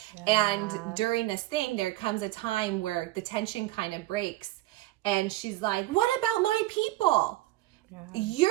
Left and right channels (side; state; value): left; quieter; 17.4 dB